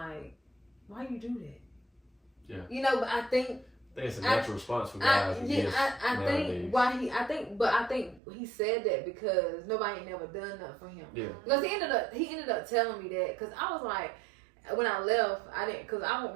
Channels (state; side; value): drops out; left; at 8.2 s